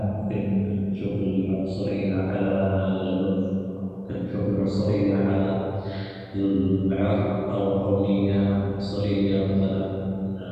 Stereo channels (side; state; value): both; identical; correlation 1.00